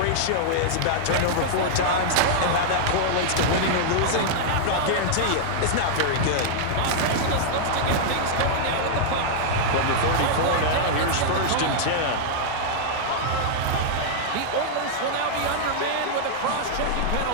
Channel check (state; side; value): different; both; correlation -0.01